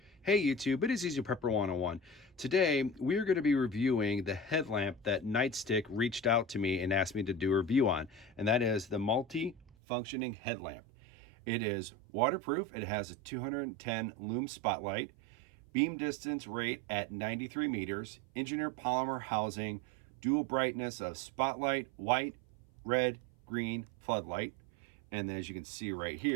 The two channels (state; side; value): drops out; left; at 9.8 s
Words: Hey YouTube, it is Easy Prepper 101. Today, we are going to be reviewing the headlamp that Nightstick reached out to me and asked me to do a review on, and that is the multi-functioning headlamp. It is waterproof, it has a 210 lume spotlight, beam distance rate at 93 meters, engineered polymer housing, dual brightness of spotlight, white, red, green, floodlight, and as you can see right